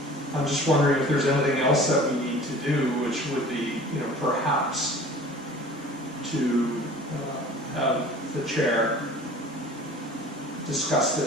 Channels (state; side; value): normal; both; correlation 0.44